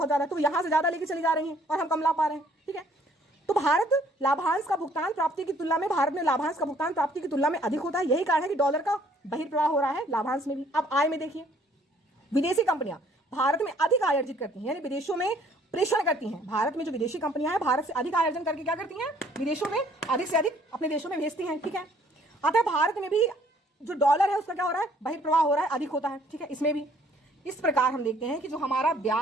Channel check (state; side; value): normal; both; correlation 0.61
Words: ज्यादा है, तो यहाँ से ज्यादा लेके चली जा रही है और हम कम ला पा रहे हैं। ठीक है, तो भारत लाभांश का भुगतान प्राप्ति की तुलना में भारत में लाभांश का भुगतान प्राप्ति की तुलना में अधिक होता है। यही कारण है कि डॉलर का बहिर्प्रवाह हो रहा है लाभांश में भी। अब आय में देखिए, विदेशी कंपनियां भारत में अधिक आय अर्जित करती हैं यानी विदेशों में प्रेषण करती हैं। भारत में जो विदेशी कंपनियां हैं भारत से अधिक आय अर्जन करके क्या करती हैं, विदेशों में अधिक से अधिक अपने देशों में भेजती हैं। ठीक है, अतः भारत में भी जो डॉलर है उसका क्या हो रहा है, बहिर्प्रवाह हो रहा है, अधिक होता है। ठीक है, इसमें भी इस प्रकार हम देखते हैं कि जो हमारा